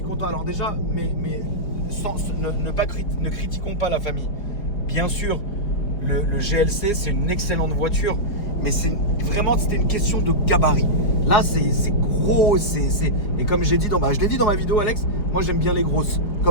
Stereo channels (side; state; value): right; late; 4.8 ms